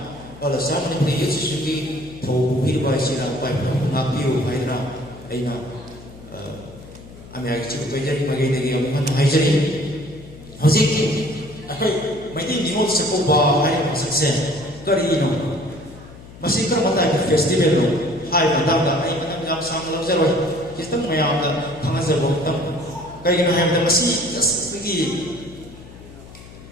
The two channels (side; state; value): left; noise; hum, 18 dB below the sound